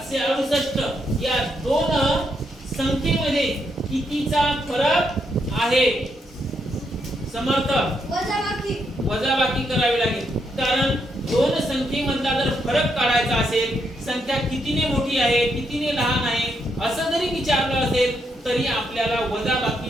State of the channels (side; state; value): both; normal; correlation 0.78